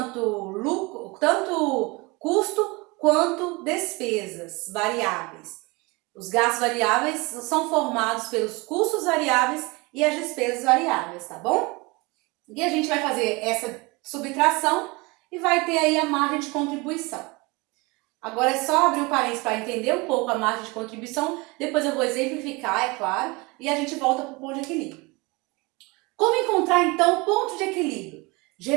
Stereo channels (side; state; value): left; quieter; 25.6 dB